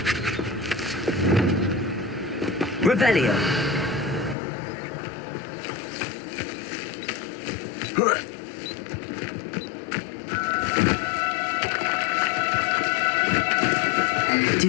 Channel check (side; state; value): right; drops out; at 4.4 s